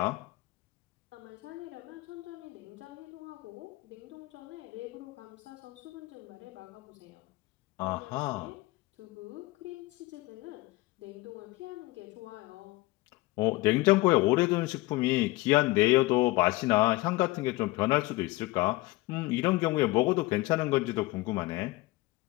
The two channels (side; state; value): right; quieter; 20.5 dB